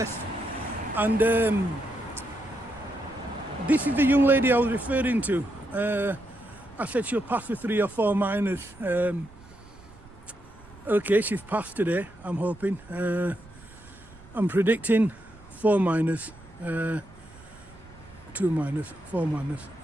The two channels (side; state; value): right; noise; rumble, 22 dB below the sound